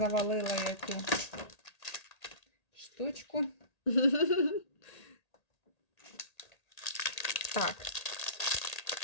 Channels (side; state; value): right; late; 1.8 ms